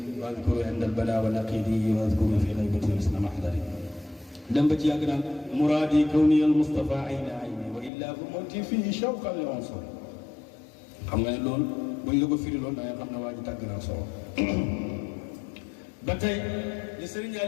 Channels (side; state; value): right; drops out; at 7.9 s